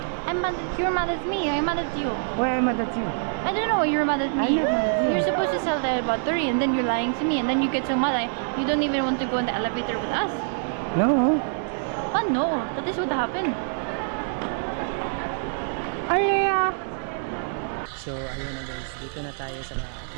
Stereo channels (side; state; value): left; silent; 61 dB below the other